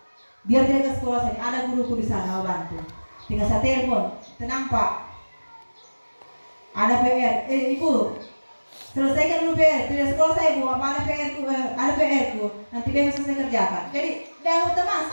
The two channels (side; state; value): both; inverted; correlation -1.00